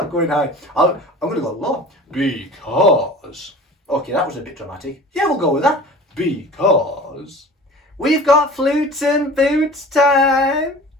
going high. I'm going to go low. Because, okay, that was a bit dramatic. Yeah, we'll go with that. Because we've got flutes and boots time.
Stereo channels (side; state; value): both; normal; correlation 0.41